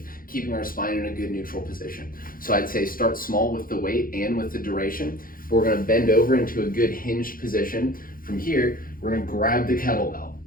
keeping our spine in a good neutral position. So I'd say start small with the weight and with the duration. But we're going to bend over into a good hinged position. From here, we're going to grab the kettlebell.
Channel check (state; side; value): late; right; 0.41 ms